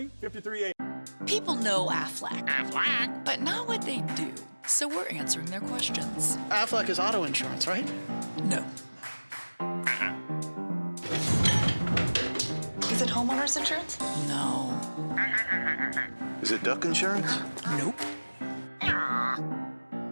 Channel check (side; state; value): both; inverted; correlation -1.00